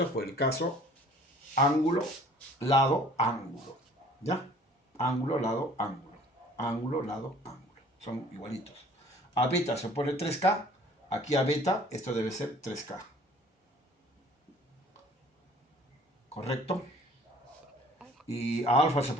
por el caso ángulo, lado, ángulo. ¿Ya? Ángulo, lado, ángulo. Ángulo, lado, ángulo. Son igualitos. A beta se pone 3K. Aquí a beta esto debe ser 3K. ¿Correcto? y a alfa se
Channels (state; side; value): normal; both; correlation 0.52